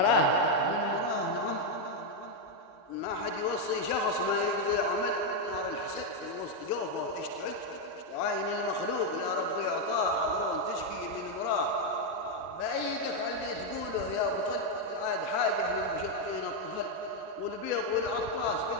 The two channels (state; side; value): normal; both; correlation 0.02